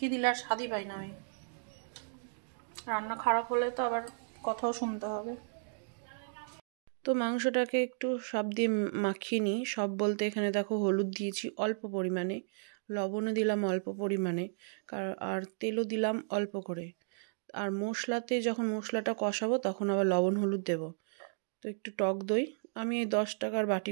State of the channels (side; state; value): left; silent; digital silence